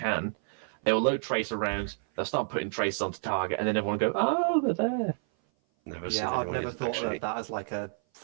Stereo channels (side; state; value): left; silent; 56 dB below the other